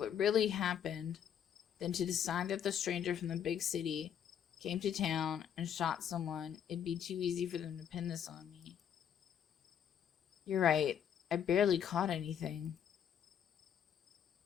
really happened than to decide that the stranger from the big city came to town and shot someone. It'd be too easy for them to pin this on me. You're right. I barely caught anything.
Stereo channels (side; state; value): right; quieter; 8.9 dB